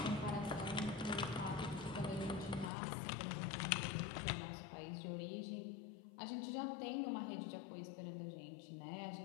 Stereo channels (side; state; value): right; drops out; at 2.7 s